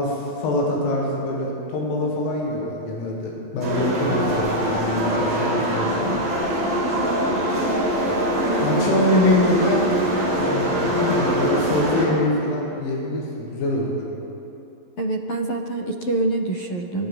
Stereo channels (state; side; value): late; right; 11 ms